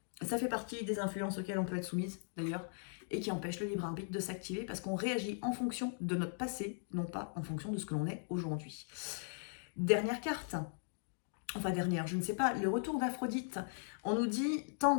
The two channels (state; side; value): silent; right; digital silence